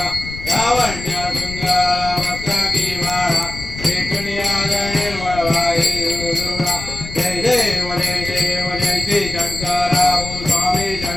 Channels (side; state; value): left; noise; rumble, 11 dB below the sound